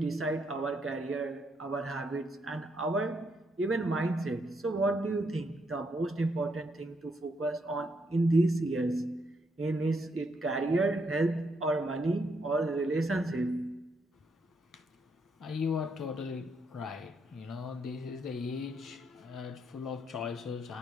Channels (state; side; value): normal; both; correlation 0.76